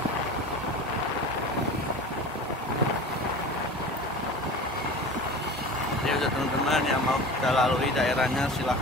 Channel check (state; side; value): normal; both; correlation 0.35